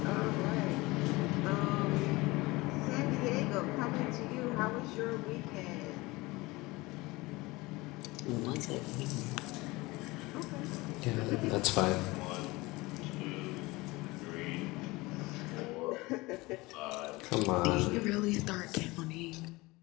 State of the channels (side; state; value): right; quieter; 22.1 dB